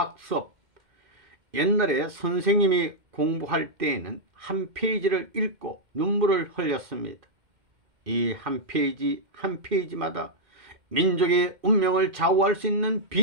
옛날에 선생님이 공부할 때에는 한 페이지를 읽고 눈물을 흘렸습니다. 이 한 페이지 한 페이지마다 민족의 운명을 좌우할 수 있는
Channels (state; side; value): late; left; 2.1 ms